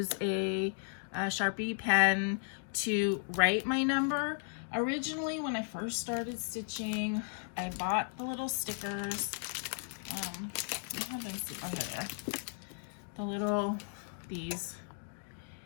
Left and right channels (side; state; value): right; silent; 54 dB below the other